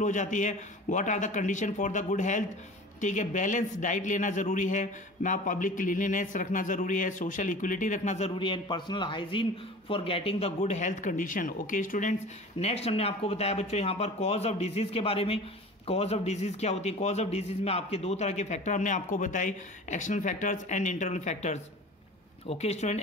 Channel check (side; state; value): both; normal; correlation 0.39